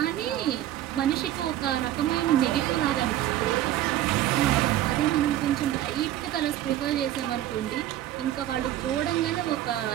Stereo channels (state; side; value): quieter; left; 13.0 dB